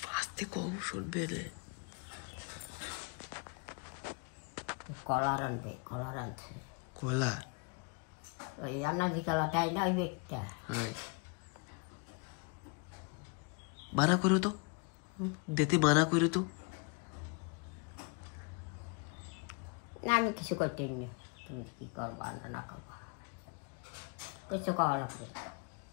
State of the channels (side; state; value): right; quieter; 32.6 dB